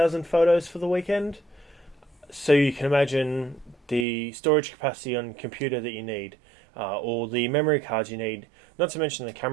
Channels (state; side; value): drops out; left; at 4.0 s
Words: photos for the weekend. So you can imagine the storage capacity on computer that you need, or the memory cards you need, not to mention the